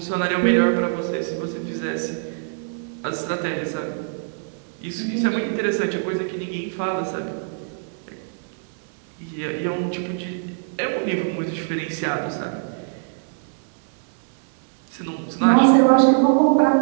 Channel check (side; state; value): left; silent; digital silence